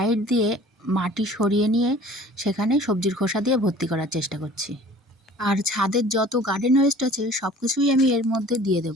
দিয়ে মাটি সরিয়ে নিয়ে সেখানে সবজির খোসা দিয়ে ভর্তি করার চেষ্টা করছি। আর ছাদের যত গার্ডেন ওয়েস্ট আছে সব কিছুই আমি এর মধ্যে দিয়ে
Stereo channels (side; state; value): both; normal; correlation 0.48